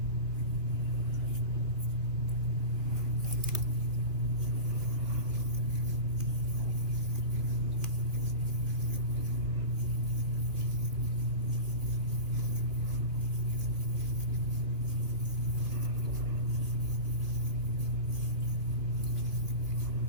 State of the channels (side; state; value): left; late; 2.5 ms